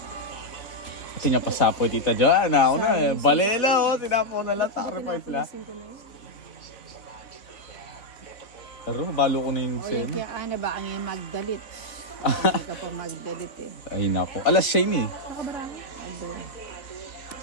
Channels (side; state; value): right; late; 3.5 ms